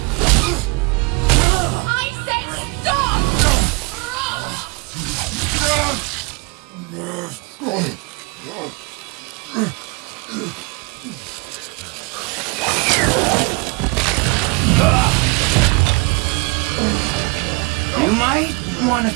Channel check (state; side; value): quieter; left; 30.3 dB